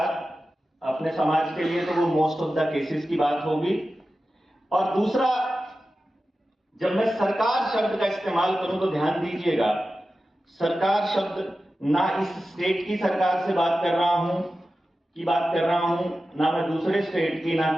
अपने समाज के लिए, तो वो मोस्ट ऑफ द केसेस की बात होगी। और दूसरा, जब मैं सरकार शब्द का इस्तेमाल करूं तो ध्यान दीजिएगा, सरकार शब्द ना इस स्टेट की सरकार से बात कर रहा हूं ना मैं दूसरे स्टेट की, ना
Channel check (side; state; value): both; normal; correlation 0.93